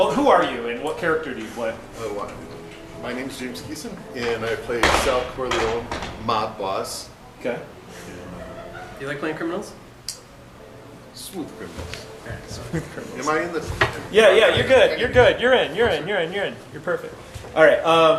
who are you and what character do you play? My name's James Geeson, and I play Sal Corleone, mob boss. Okay. You like playing criminals? Smooth criminals. Am I in the? Yeah, you're good. You're good. You're in. You're perfect. All right.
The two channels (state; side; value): identical; both; correlation 1.00